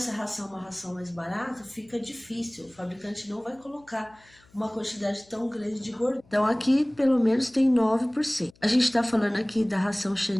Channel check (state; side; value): noise; left; hum, 30 dB below the sound